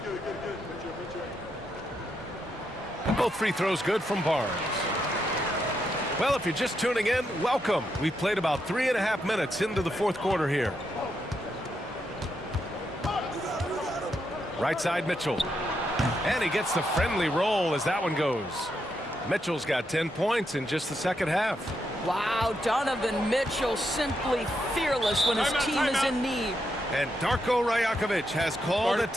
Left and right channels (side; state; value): both; normal; correlation 0.81